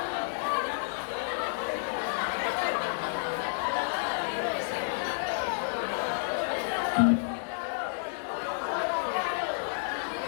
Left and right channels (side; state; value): right; silent; 57 dB below the other